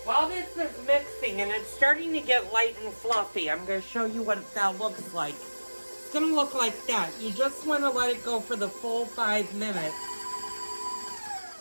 While this is mixing and it's starting to get light and fluffy, I'm going to show you what that looks like. It's going to look like that. You just want to let it go for the full 5 minutes.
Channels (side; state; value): both; inverted; correlation -1.00